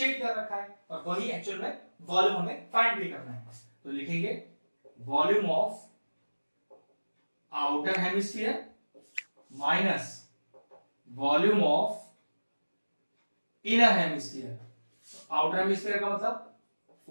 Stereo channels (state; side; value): inverted; both; correlation -1.00